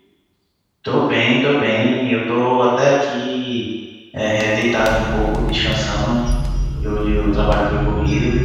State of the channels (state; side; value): identical; both; correlation 1.00